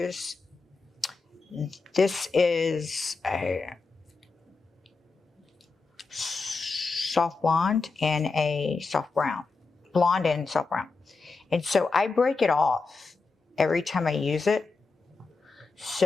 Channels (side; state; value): right; quieter; 4.1 dB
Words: this is a soft blonde and a soft brown. Blonde and soft brown. And so I break it off every time I use it.